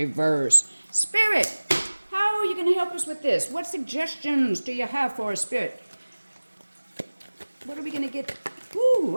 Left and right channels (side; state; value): both; inverted; correlation -1.00